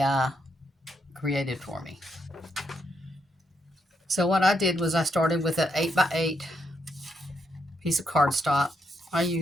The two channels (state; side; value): normal; both; correlation 0.78